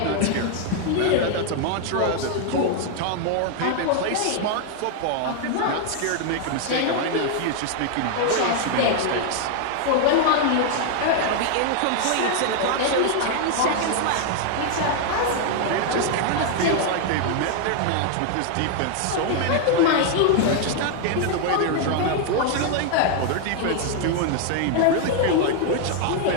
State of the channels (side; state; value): both; different; correlation 0.00